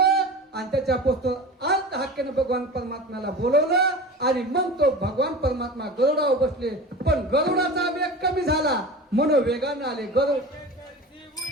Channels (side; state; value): both; normal; correlation 0.33